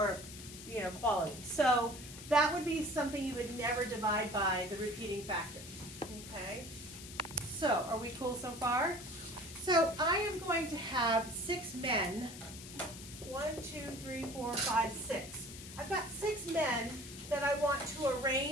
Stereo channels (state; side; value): noise; left; hiss, 13 dB below the sound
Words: quality. So that would be something you would never divide by the repeating factor. Okay? So, are we cool so far? So I am going to have 6 men. 1, 2, 3, 4, 5, 6. I've got 6 men that I want to